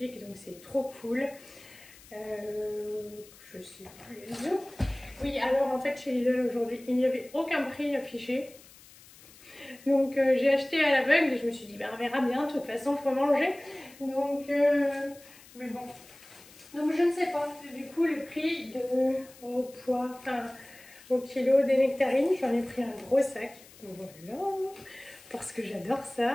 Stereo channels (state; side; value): noise; left; hiss, 22 dB below the sound